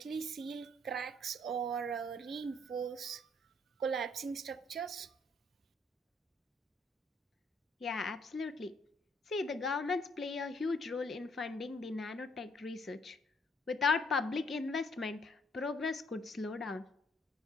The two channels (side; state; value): both; normal; correlation 0.66